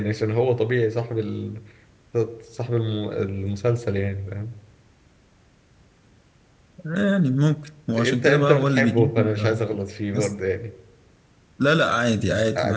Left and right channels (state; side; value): identical; both; correlation 1.00